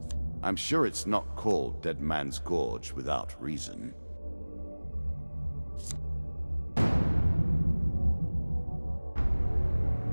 I'm sure it's not called Dead Man's Gorge without reason.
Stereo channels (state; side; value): inverted; both; correlation -1.00